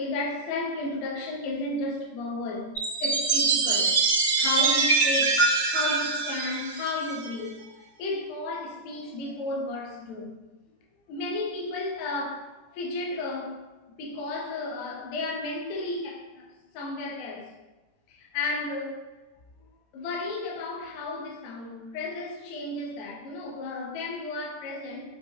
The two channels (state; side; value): late; right; 17 ms